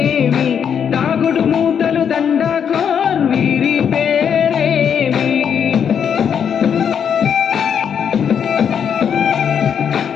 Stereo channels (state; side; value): quieter; right; 7.8 dB